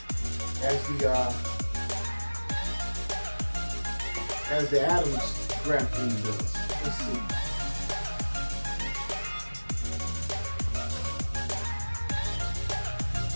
as the Adams graphene does. Let's see.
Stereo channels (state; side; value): inverted; both; correlation -1.00